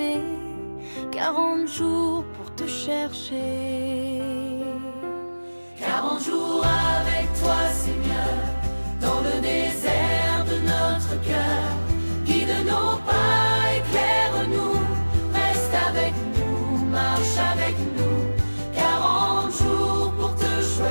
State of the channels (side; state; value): both; inverted; correlation -1.00